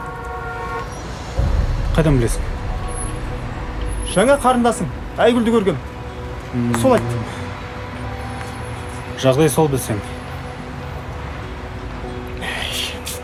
Қайдан білесің? Жаңа қарындасың, Айгүлді көргем. Сол айтты. Жағдай сол білсең.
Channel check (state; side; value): identical; both; correlation 1.00